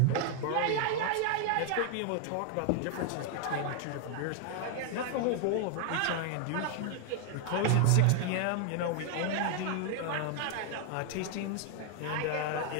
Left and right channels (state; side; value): different; both; correlation 0.00